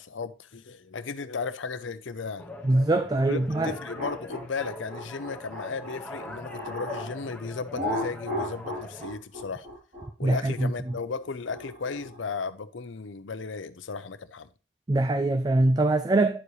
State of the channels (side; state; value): both; normal; correlation 0.57